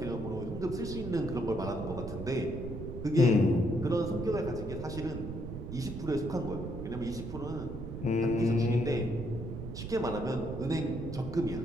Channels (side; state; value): right; noise; rumble, 7 dB below the sound